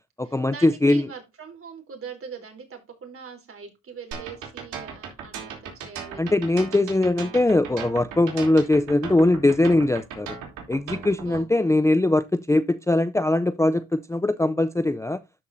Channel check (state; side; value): normal; both; correlation 0.91